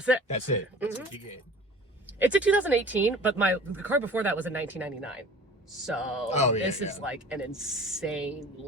it. That's it. That's what you get. It's a 2018, but the car before that was in 1999. So this is like an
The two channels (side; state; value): both; normal; correlation 0.43